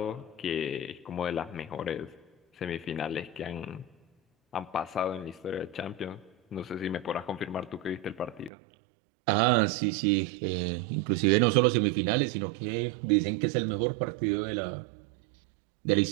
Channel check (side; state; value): left; drops out; at 8.5 s